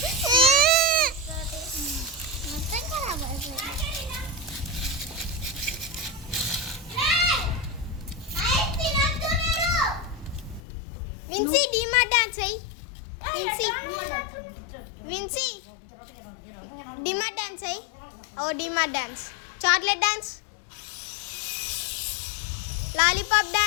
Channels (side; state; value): right; drops out; at 10.6 s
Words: విన్సీ డిమార్ట్ డాన్స్ అయ్యి. విన్సీ విన్సీ డిమార్ట్ డాన్స్ అయ్యి. ఓ DMart dance, chocolate dance, lollipop